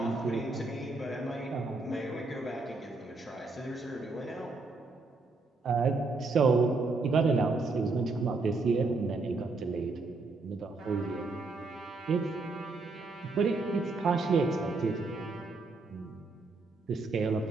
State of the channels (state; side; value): quieter; left; 3.6 dB